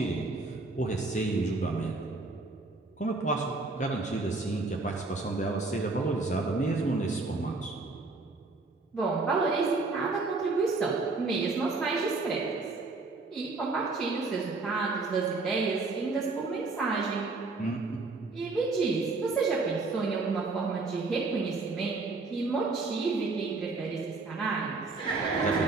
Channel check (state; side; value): quieter; left; 3.6 dB